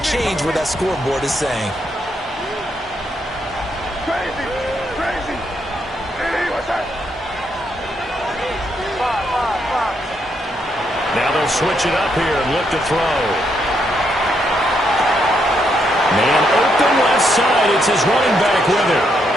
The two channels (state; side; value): normal; both; correlation 0.77